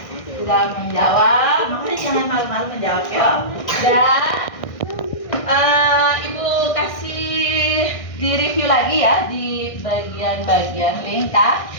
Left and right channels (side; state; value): right; late; 1.6 ms